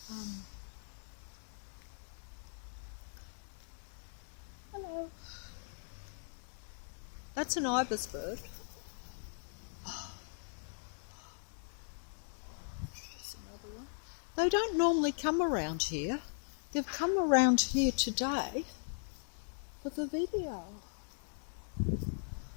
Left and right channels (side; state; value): right; silent; 52 dB below the other